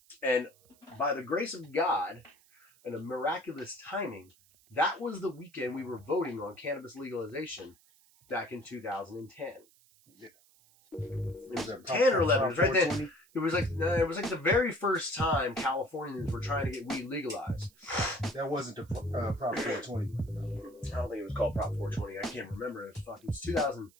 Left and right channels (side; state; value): right; noise; hiss, 29 dB below the sound